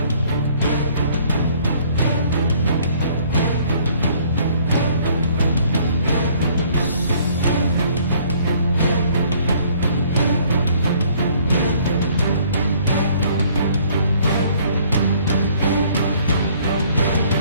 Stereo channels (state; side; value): inverted; both; correlation -0.60